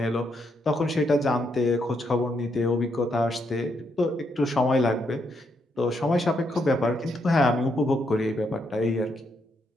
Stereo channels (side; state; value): both; normal; correlation 0.78